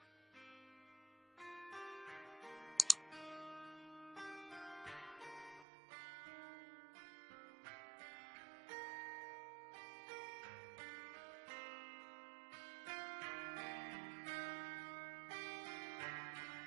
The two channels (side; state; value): left; drops out; at 5.7 s